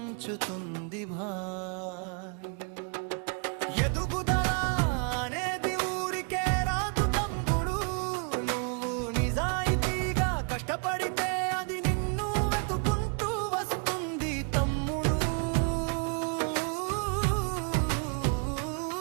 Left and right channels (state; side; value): quieter; left; 38.4 dB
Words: ఎదుగుదల అనేది ఊరికే రాదు తమ్ముడు, నువ్వు నిజాయితీగా కష్టపడితే అది నిన్ను వెతుకుంటూ వస్తుంది తమ్ముడు.